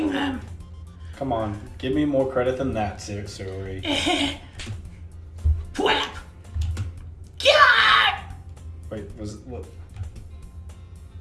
them. Come on, give me more credit than that, Sayori. Whap! God! Wait, was it what?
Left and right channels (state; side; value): identical; both; correlation 1.00